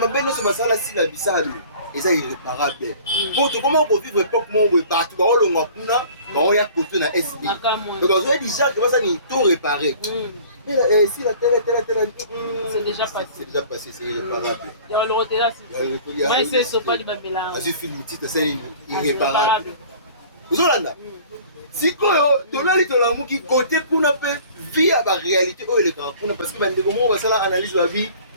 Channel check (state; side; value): inverted; both; correlation -0.47